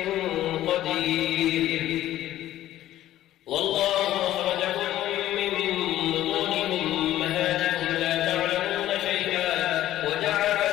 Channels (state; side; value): quieter; right; 13.6 dB